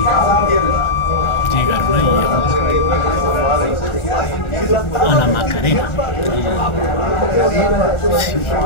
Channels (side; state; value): right; late; 1.4 ms